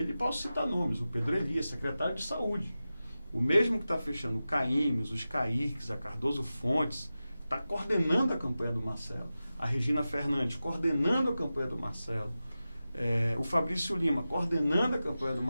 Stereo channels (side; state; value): both; inverted; correlation -0.94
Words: e posso citar nomes, o Pedro Elias, secretário de Saúde, o mesmo que está fechando o CAIMES, os CAIRCs, a Cardoso Fontes, está coordenando a campanha do Marcelo. A Regina Fernandes coordenando a campanha do Marcelo. O Fabrício Lima coordenando a campanha do